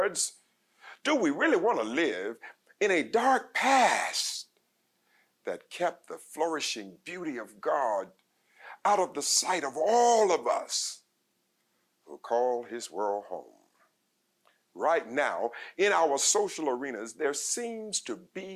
do we really want to live in a dark past that kept the flourishing beauty of God out of the sight of all of us who call his world home? Right now, in our social arenas, there seems to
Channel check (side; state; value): both; identical; correlation 1.00